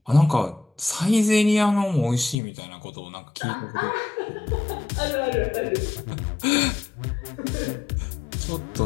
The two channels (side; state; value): right; drops out; at 2.4 s